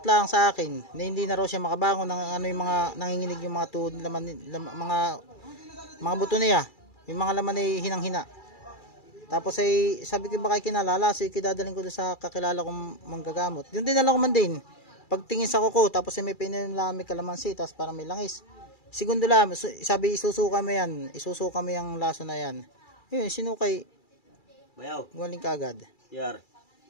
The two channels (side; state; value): right; late; 2.3 ms